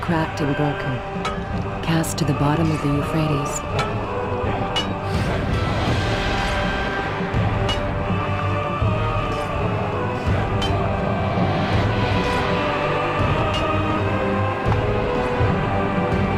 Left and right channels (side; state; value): both; identical; correlation 1.00